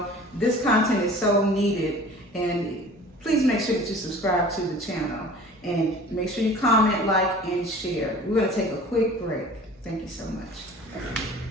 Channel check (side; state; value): both; normal; correlation 0.44